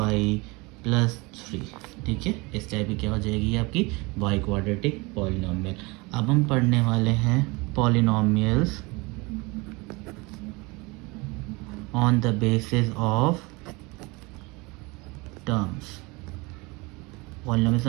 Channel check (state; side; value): quieter; left; 25.6 dB